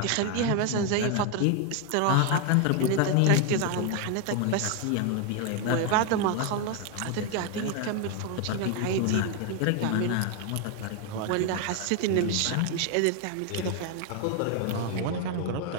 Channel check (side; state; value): both; different; correlation 0.01